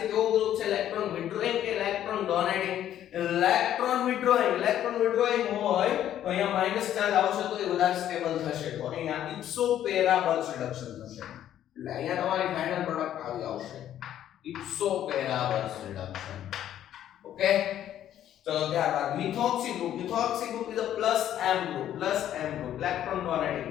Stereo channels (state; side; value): quieter; right; 11.3 dB